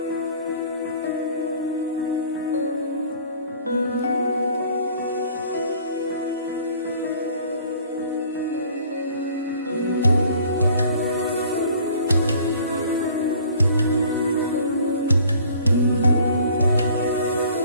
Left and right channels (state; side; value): inverted; both; correlation -0.53